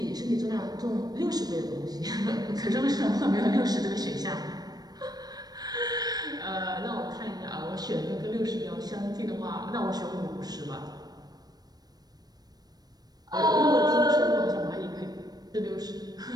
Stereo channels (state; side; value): late; left; 0.19 ms